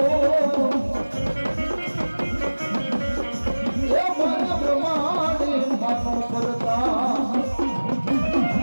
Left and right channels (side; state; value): both; inverted; correlation -1.00